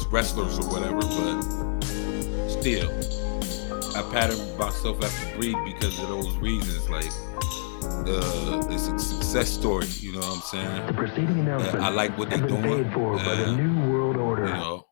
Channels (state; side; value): silent; right; digital silence